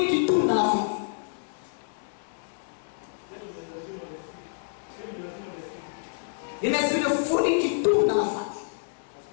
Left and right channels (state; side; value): silent; right; 59 dB below the other